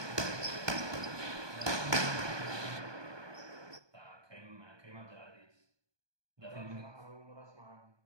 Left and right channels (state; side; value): late; left; 1.2 ms